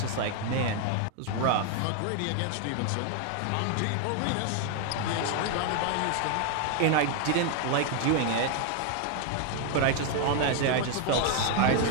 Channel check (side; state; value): both; different; correlation 0.00